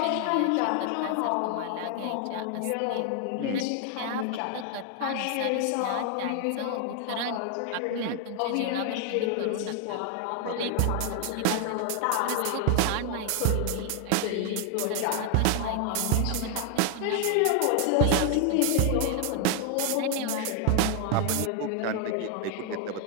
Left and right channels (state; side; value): different; both; correlation 0.00